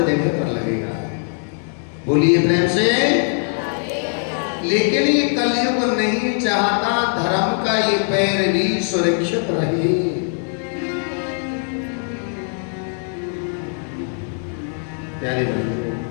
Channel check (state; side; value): silent; right; 57 dB below the other